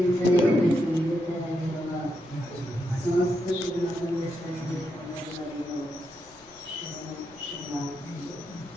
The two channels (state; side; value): noise; left; rumble, 26 dB below the sound